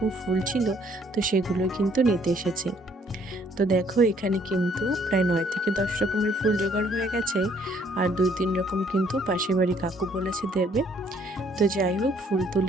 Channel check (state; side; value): normal; both; correlation 0.64